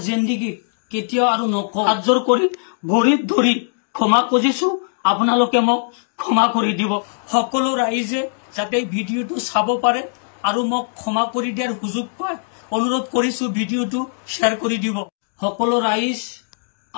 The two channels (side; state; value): right; silent; digital silence